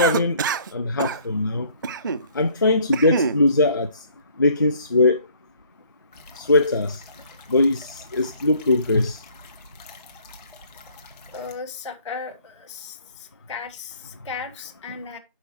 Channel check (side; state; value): both; inverted; correlation -0.58